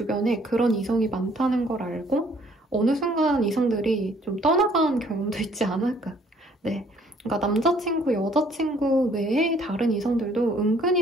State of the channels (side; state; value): both; normal; correlation 0.61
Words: 그런 이성이 많다는 걸 알고 어느 순간 이성들이 좀 떠나간 경험도 있지 않을까. 네, 그러니까 남자친구, 여자친구 외에 다른 이성들도